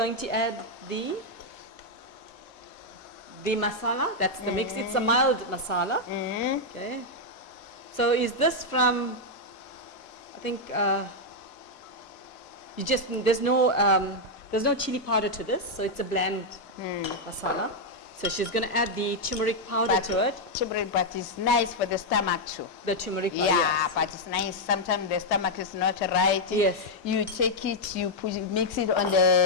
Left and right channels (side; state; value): right; late; 1.2 ms